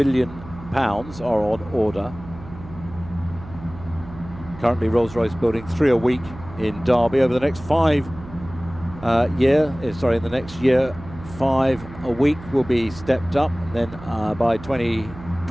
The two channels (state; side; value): noise; right; hum, 16 dB below the sound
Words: are on order. Currently, Rolls-Royce building 3 a week in Derby. Over the next in the next year, 5 a week will be stepped up, and then by